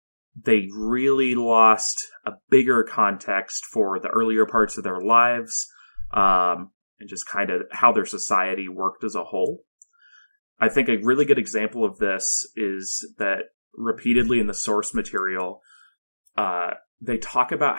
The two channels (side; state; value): both; inverted; correlation -1.00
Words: they really lost a bigger context for the earlier parts of their lives. And just kind of how their society worked as a whole. I think a really good example of this is that repeatedly in the source material, they talk about